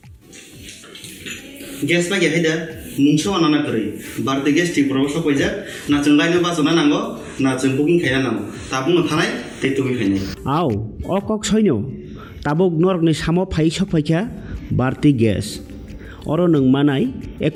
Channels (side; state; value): both; identical; correlation 1.00